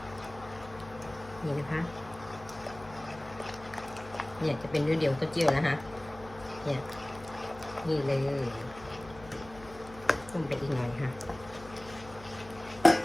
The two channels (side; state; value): left; noise; hum, 18 dB below the sound